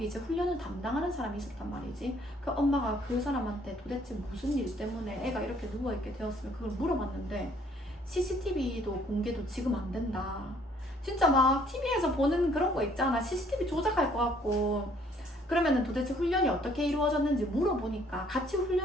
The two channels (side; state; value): both; normal; correlation 0.62